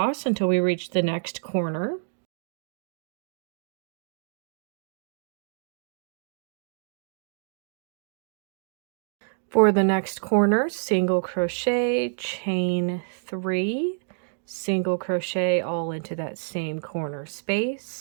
until we reach the next corner. For the next corner, single crochet, chain 3, single crochet all into that same corner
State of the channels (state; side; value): silent; left; digital silence